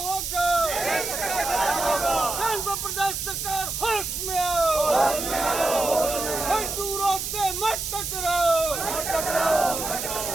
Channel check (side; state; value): right; noise; hiss, 4 dB below the sound